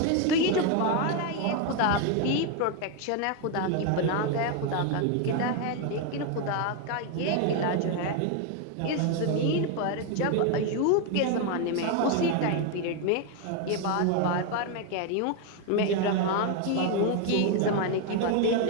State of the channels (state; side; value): different; both; correlation 0.01